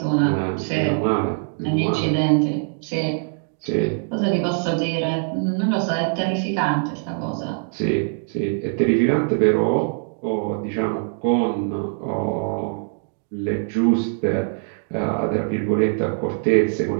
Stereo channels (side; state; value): left; silent; 64 dB below the other